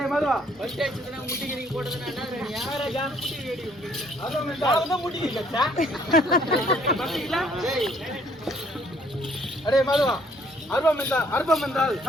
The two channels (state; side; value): normal; both; correlation 0.63